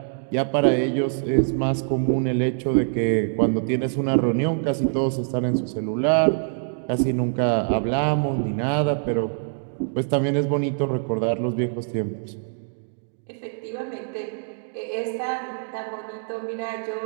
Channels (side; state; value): left; silent; digital silence